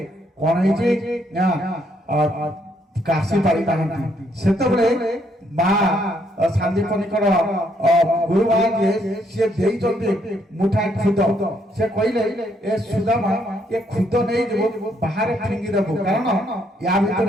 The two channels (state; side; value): normal; both; correlation 0.72